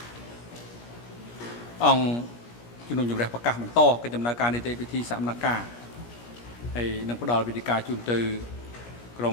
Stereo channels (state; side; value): late; right; 17 ms